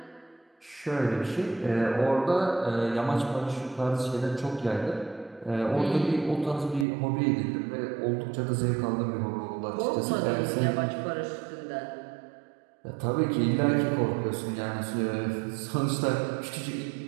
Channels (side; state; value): left; drops out; at 6.9 s